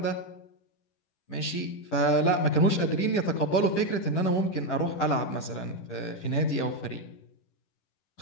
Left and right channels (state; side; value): late; right; 11 ms